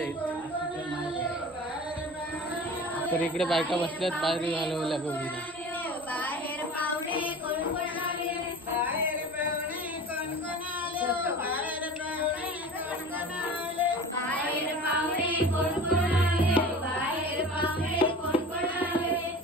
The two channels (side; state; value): right; noise; rumble, 29 dB below the sound